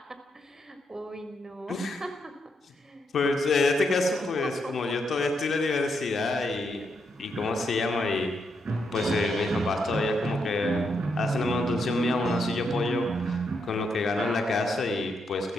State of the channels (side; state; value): both; normal; correlation 0.80